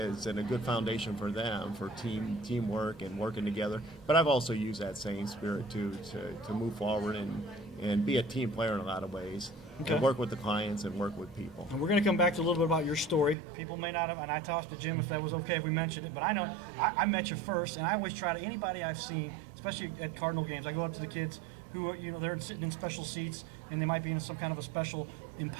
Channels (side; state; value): left; drops out; at 13.4 s